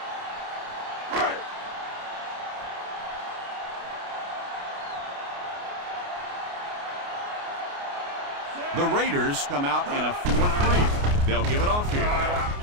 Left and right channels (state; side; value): late; left; 29 ms